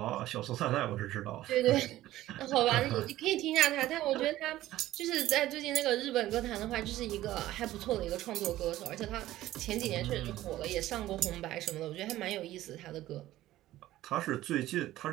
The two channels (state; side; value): quieter; left; 15.1 dB